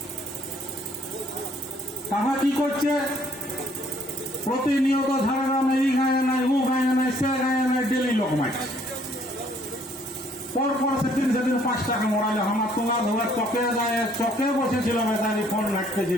তারা কি করছে, প্রতিনিয়ত ঝাড়গ্রামে এই মারছে। পরপর সেদিন 5 টাকা মরাইল। আমার তোমার ধরে চকে যায়, চকে বসেছিল বেচারি, ফোন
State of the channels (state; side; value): normal; both; correlation 0.63